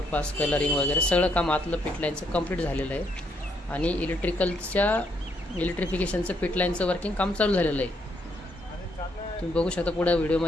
कलरिंग वगैरे सगळं काम आतलं फिट लाईनचं कंप्लीट झालेलं आहे आणि इलेक्ट्रिफिकेशनचं फिट लाईनचं वर्किंग काम चालू झालेलं आहे। तुम्ही बघू शकता पुढे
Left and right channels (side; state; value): both; normal; correlation 0.74